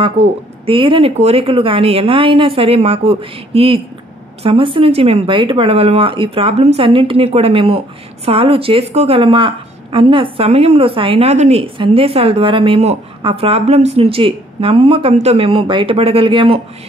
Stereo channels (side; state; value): both; normal; correlation 0.63